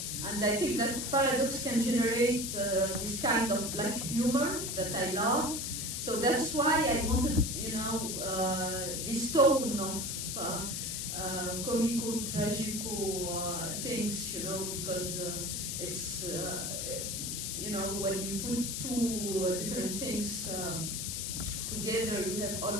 and I think that paradox can generate this kind of black humor that I love. So that's why I wanted, this tone of comico, tragico things, because it's, when you put two different things together, you have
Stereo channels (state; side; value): noise; left; hiss, 3 dB below the sound